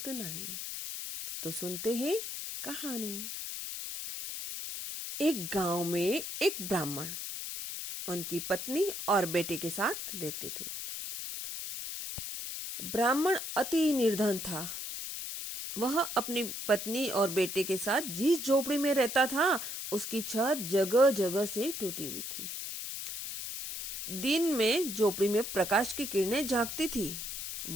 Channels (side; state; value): left; noise; hiss, 6 dB below the sound